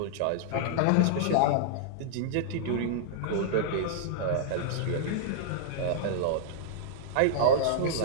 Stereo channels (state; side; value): different; both; correlation -0.02